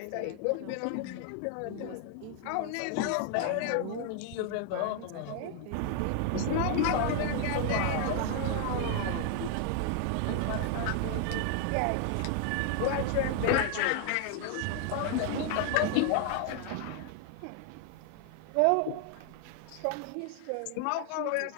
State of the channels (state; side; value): different; both; correlation 0.00